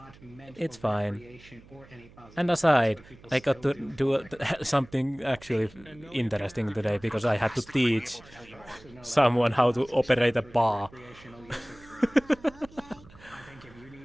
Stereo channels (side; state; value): right; noise; hum, 23 dB below the sound